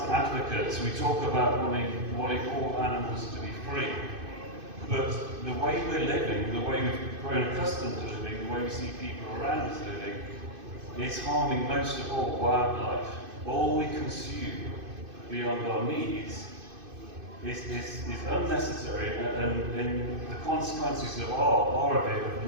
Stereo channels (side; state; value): left; late; 2.5 ms